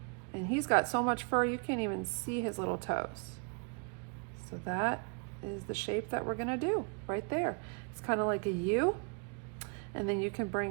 And he's got so much fur you can't even see his little toes. So that is the shape that we're going to do right there. It's kind of like a U. And then you can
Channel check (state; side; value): quieter; left; 38.4 dB